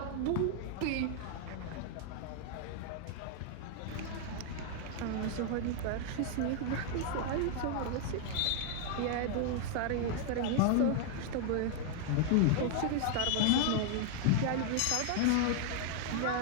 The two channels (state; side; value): different; both; correlation 0.00